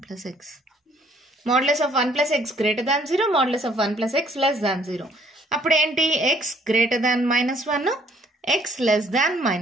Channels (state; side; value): normal; both; correlation 0.62